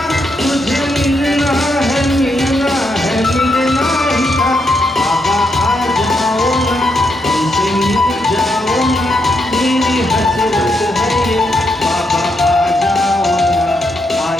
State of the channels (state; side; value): normal; both; correlation 0.80